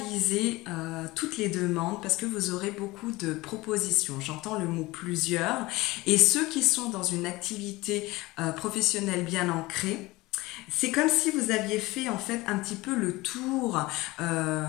toutes les demandes parce que vous aurez beaucoup de propositions. J'entends le mot plusieurs. Et ceux qui sont dans une activité professionnelle bien ancrée, C'est comme si vous aviez fait en fait un petit peu le tour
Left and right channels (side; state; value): right; quieter; 20.5 dB